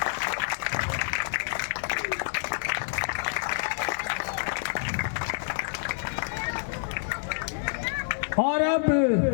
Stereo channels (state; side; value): silent; right; digital silence